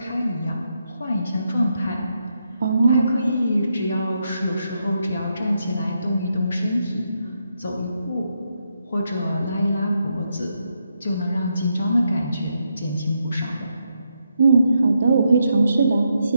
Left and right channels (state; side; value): inverted; both; correlation -0.81